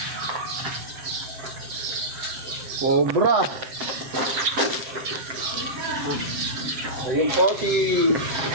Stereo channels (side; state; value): left; late; 7.7 ms